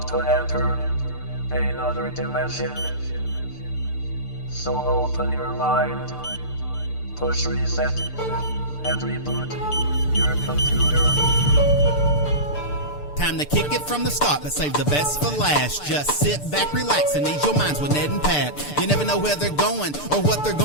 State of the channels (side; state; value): right; late; 6.8 ms